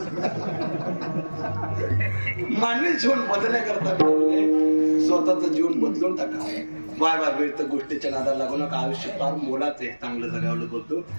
मानवी जीवन बदलण्याकरता स्वतःचं जीवन बदलून टाका. वाय तर गोष्टीच्या नादाला लागू नका. आयुष्य फार मोलाचं आहे, चांगलं जगावलं बोलतो.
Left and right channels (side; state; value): both; inverted; correlation -1.00